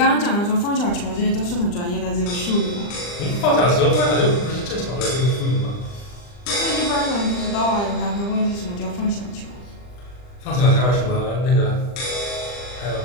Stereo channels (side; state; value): right; late; 40 ms